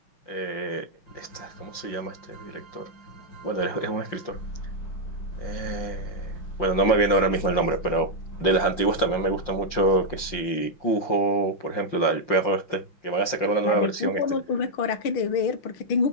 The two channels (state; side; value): late; right; 5.7 ms